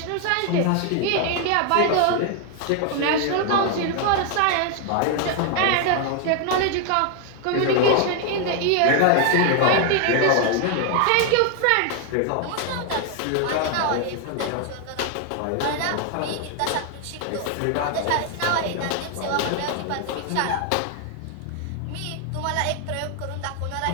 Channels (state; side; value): different; both; correlation 0.01